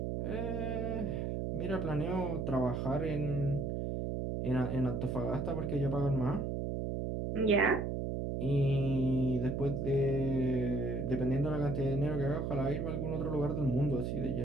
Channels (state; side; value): noise; right; hum, 1 dB below the sound